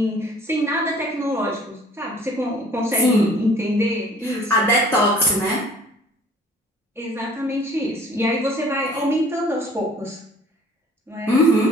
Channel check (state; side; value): normal; both; correlation 0.52